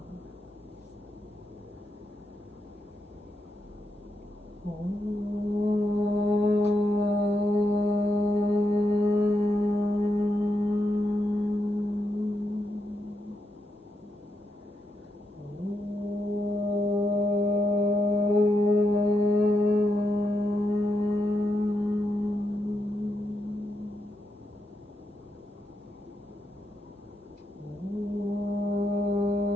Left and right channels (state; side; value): normal; both; correlation 0.83